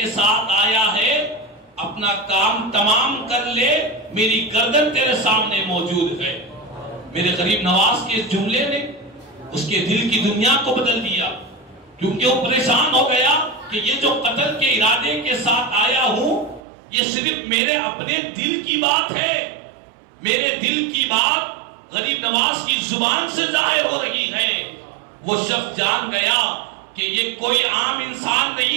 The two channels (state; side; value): drops out; left; at 16.6 s